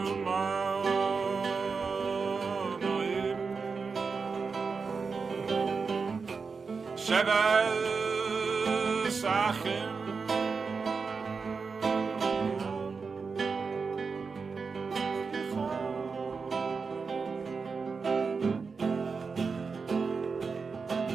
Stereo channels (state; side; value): quieter; left; 5.0 dB